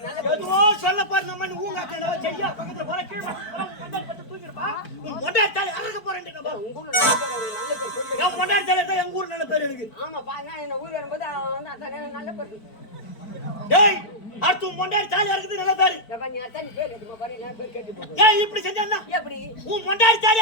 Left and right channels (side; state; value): right; late; 4.5 ms